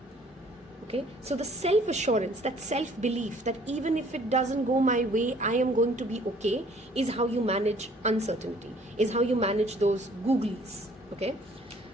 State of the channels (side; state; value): both; normal; correlation 0.57